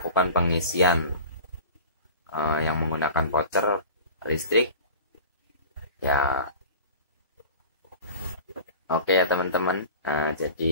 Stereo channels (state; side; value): inverted; both; correlation -0.38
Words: pengisian yang menggunakan voucher listrik ya. Oke ya teman-teman,